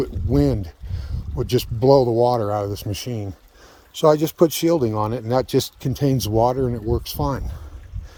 would just blow the water out of this machine. So I just put shielding on it, and that just contains water and it works fine.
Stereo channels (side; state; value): both; identical; correlation 1.00